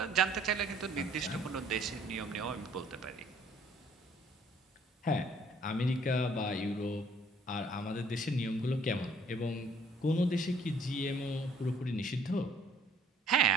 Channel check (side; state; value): both; normal; correlation 0.60